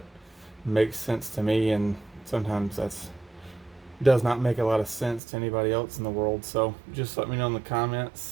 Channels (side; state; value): left; drops out; at 5.2 s